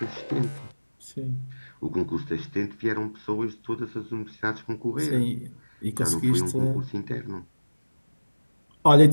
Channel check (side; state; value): both; inverted; correlation -1.00